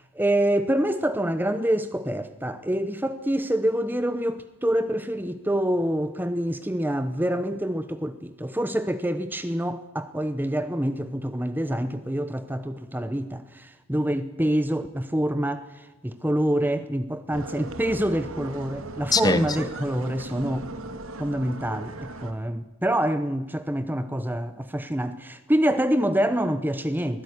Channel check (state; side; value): normal; both; correlation 0.87